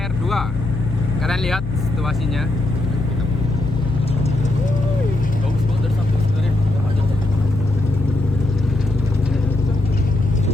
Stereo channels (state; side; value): noise; left; hum, 6 dB below the sound